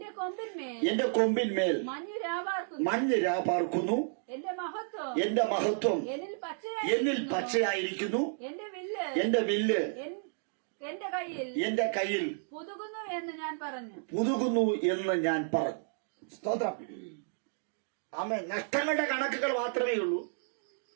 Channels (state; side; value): silent; left; digital silence